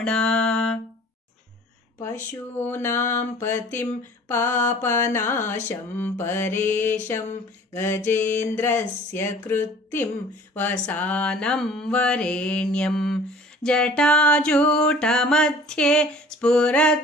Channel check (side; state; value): both; normal; correlation 0.48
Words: ಪಶೂನಾಂ ಪತಿಂ ಪಾಪನಾಶಂ ಪರೇಶಂ ಗಜೇಂದ್ರಸ್ಯ ಕೃತ್ತಿಂ ವಸಾನಂ ವರೇಣ್ಯಂ. ಜಟಾಜೂಟ ಮಧ್ಯೆ ಸ್ಫುರದ್ದಾಂಗವಾರಿಂ